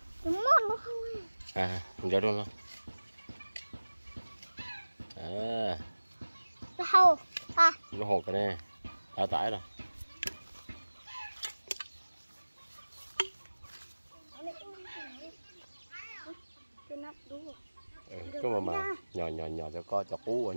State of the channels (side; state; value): both; inverted; correlation -1.00